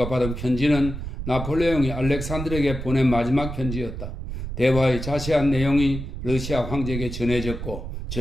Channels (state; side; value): noise; right; rumble, 7 dB below the sound